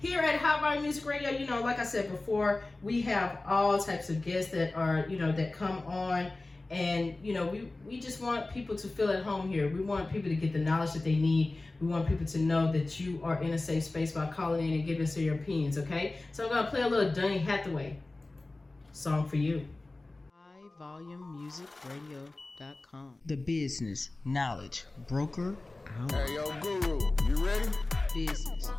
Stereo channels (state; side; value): quieter; right; 3.1 dB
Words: at Hot Bar Music Radio, you know, like I said before, we have all types of guests that are, you know, that come on, And we just want people to feel at home here. We want people to get the knowledge that they need. We want people to know that you are in a safe space by calling in and giving us your opinions, okay? So I'm gonna play a little Donny Hathaway song for you. HighVolumeMusicRadio.com. The business knowledge broker out. Hey, yo, Guru, you ready? Business,